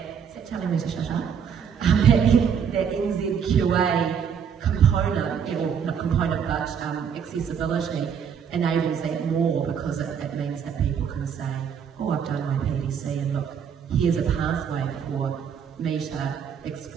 is that telling me to shut up? that NZQA component, or not component, but accessibility enables that more, because it means that people can say, oh, I've done my PDC and look, here's a pathway for me to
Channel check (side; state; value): left; quieter; 7.4 dB